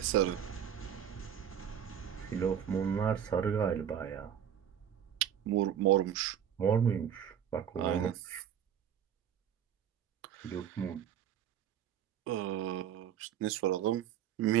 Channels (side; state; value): left; quieter; 9.2 dB